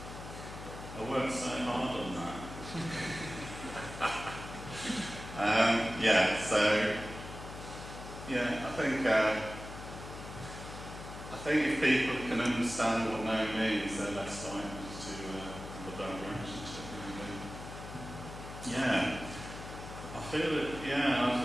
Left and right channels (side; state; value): left; noise; hum, 11 dB below the sound